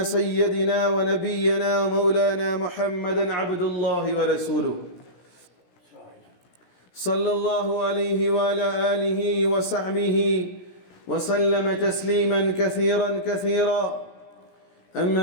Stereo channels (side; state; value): right; late; 17 ms